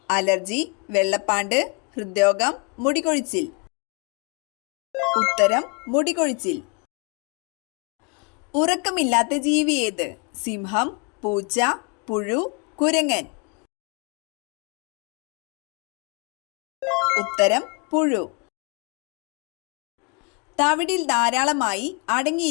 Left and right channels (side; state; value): right; quieter; 33.0 dB